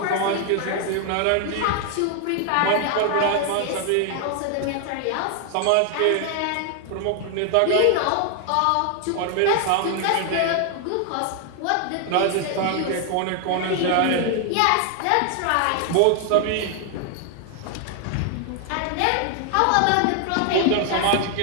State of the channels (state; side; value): different; both; correlation 0.00